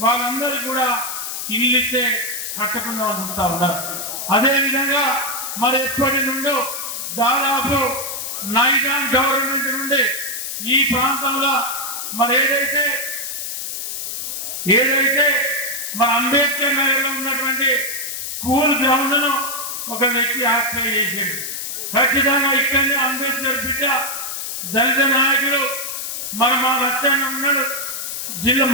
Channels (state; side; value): noise; left; hiss, 5 dB below the sound